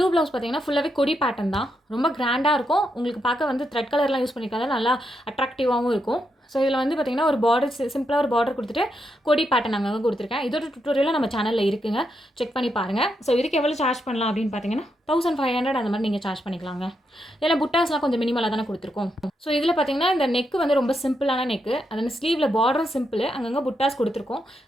ப்ளவுஸ் பார்த்தீங்கன்னா ஃபுல்லாகவே கொடி பேட்டர்ன் தான். ரொம்ப கிராண்டாக இருக்கும். உங்களுக்கு பார்க்க வந்து த்ரெட் கலர்லாம் யூஸ் பண்ணியிருக்காங்க, நல்லா அட்ராக்டிவாகவும் இருக்கும். ஸோ இதில் வந்து பார்த்திங்கன்னா ஒரு பார்டர் சிம்பிளாக ஒரு பார்டர் கொடுத்துட்டு கொடி பேட்டர்ன் அங்கங்கே கொடுத்துருக்கேன். இதோட டுட்டோரியலும் நம்ம சேனலில் இருக்குங்க, செக் பண்ணி பாருங்கள். ஸோ இதுக்கு எவ்வளோ சார்ஜ் பண்ணலாம் அப்படின்னு பார்த்தீங்கன்னா 1500 அந்த மாதிரி நீங்கள் சார்ஜ் பண்ணிக்கலாங்க. இதில் புட்டாஸ்லாம் கொஞ்சம் மினிமலாக தானே கொடுத்துருக்கோம். ஸோ இதில் பார்த்தீங்கன்னா இந்த நெக்கு வந்து ரொம்ப சிம்பிளான நெக்கு. அதில் ஸ்லீவில் பார்டரும் சிம்பிள், அங்கங்கே புட்டாஸ் கொடுத்துருக்கோம்.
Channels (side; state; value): both; normal; correlation 0.82